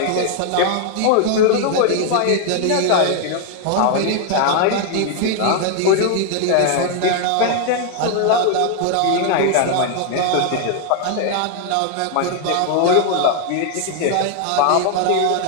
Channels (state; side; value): different; both; correlation 0.00